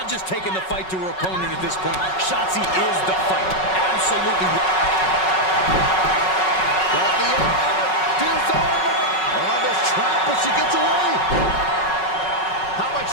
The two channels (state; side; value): late; right; 5.4 ms